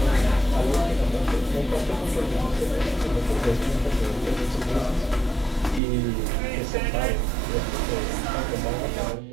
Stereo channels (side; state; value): left; drops out; at 5.8 s